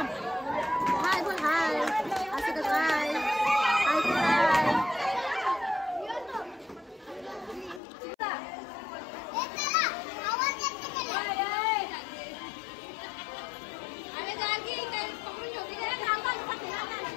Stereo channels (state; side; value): drops out; right; at 7.8 s